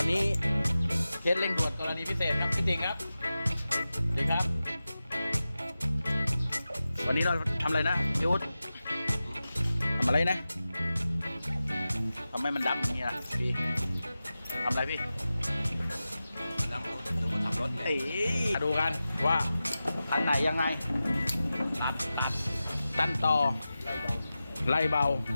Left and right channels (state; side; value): inverted; both; correlation -0.94